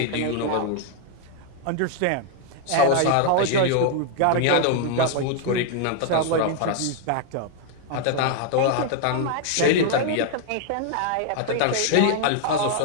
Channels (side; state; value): both; different; correlation 0.00